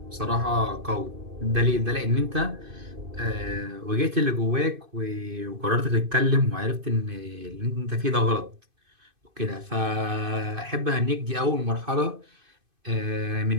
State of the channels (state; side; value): late; left; 2.5 ms